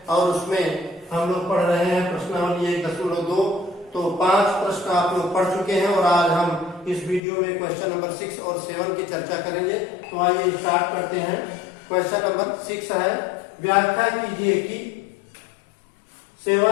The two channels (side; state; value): right; drops out; at 7.2 s